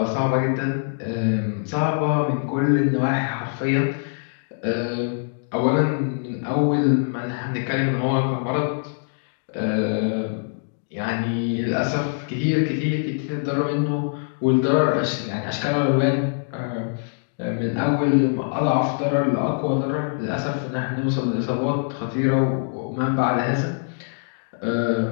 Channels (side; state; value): right; silent; digital silence